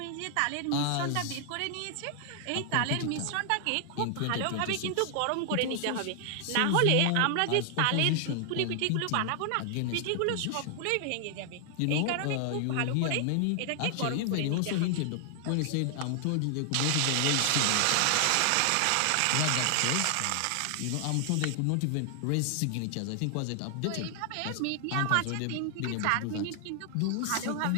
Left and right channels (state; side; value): different; both; correlation 0.00